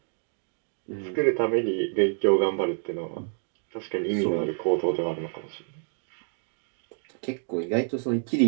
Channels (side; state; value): left; silent; 59 dB below the other